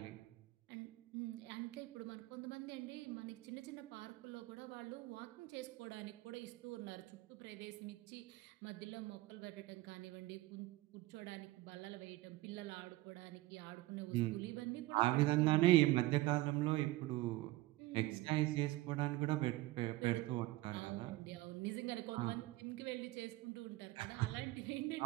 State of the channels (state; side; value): quieter; left; 18.2 dB